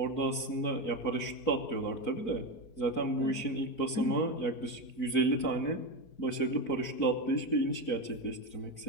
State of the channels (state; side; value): late; right; 4.5 ms